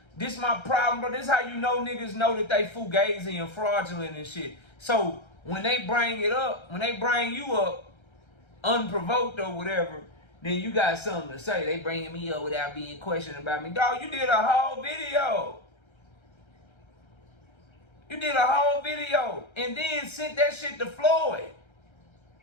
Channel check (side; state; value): right; late; 1.3 ms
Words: This my problem, bro. This is how you know niggas know that they fugazi and fraudulent and shit. So when they bring it up, when they bring you up unprovoked or whatever, then you got something to say. They bringing me up without being questioned about me. Dog, you did a whole video. You did a whole video and then sent that shit to Floyd